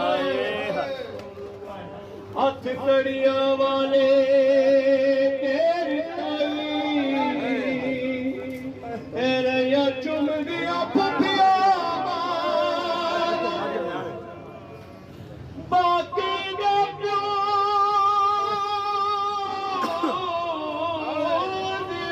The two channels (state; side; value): identical; both; correlation 1.00